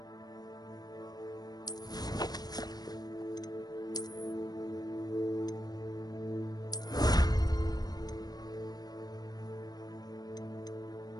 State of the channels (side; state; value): right; late; 0.19 ms